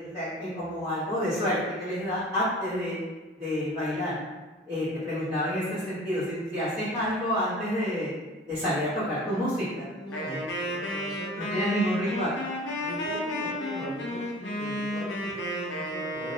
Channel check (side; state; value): both; normal; correlation 0.42